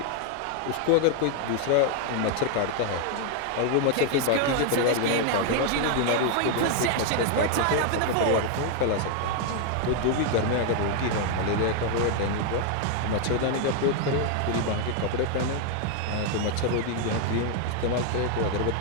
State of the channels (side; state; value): both; different; correlation 0.00